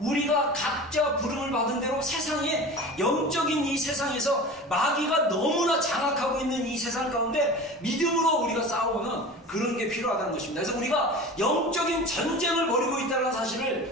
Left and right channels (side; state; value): both; normal; correlation 0.35